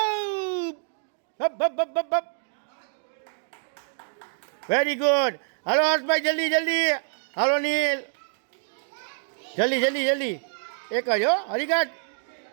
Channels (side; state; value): left; silent; digital silence